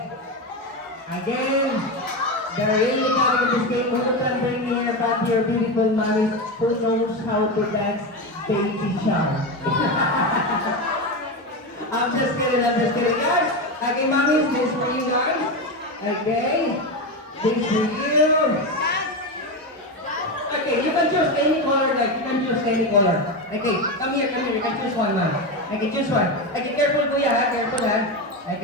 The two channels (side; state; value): both; normal; correlation 0.16